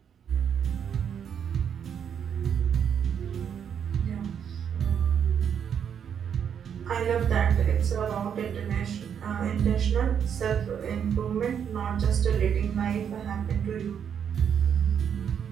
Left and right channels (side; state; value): left; quieter; 8.1 dB